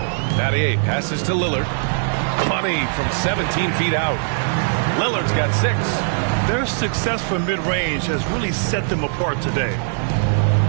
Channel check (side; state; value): left; silent; digital silence